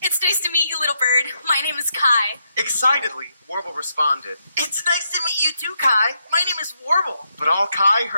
It's nice to meet you, little bird. My name is Kai. Excitedly, Warble responded. It's nice to meet you too, Kai. My name is Warble. But all Kai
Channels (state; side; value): inverted; both; correlation -0.80